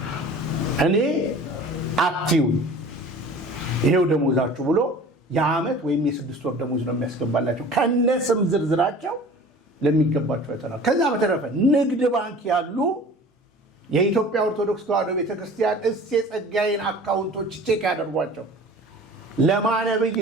እኔ አትዩን፣ ይሄው ደሞዛችሁ ብሎ የዓመት ወይም የ6 ወር ደሞዝ ነው የሚያስገባላቸው ከነስም ዝርዝራቸው ለሚገባቸው አይተናል። ከዛ በተረፈ ንግድ ባንክ ያሉ የኢትዮጵያ ኦርቶዶክስ ተዋሕዶ ቤተክርስቲያን የጸጋዬን አካውንቶች ቼክ ያደርጓቸው። ለማነብይ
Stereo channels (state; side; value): normal; both; correlation 0.43